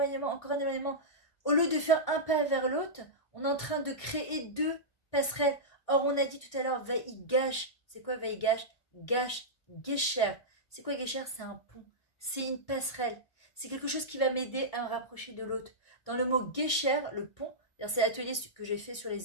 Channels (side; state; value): right; late; 1.6 ms